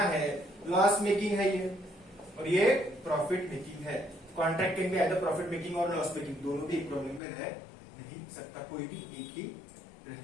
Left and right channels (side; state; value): right; drops out; at 7.2 s